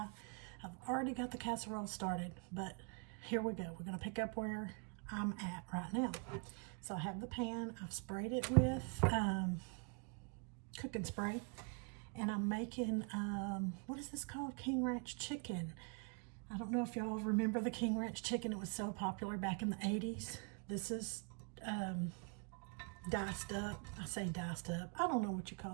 I've already got the casserole started, but here we go. We're going to pick up where I'm at right now. So I have the pan. I've sprayed it with cooking spray, and I'm making, what is this called? King Ranch chicken. I don't know if y'all remember the King Ranch chicken. It was so popular back in the 80s. This is diced up. I say diced up. I don't know what you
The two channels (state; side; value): quieter; left; 36.9 dB